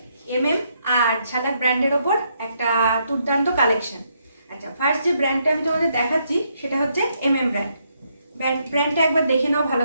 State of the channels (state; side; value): inverted; both; correlation -0.76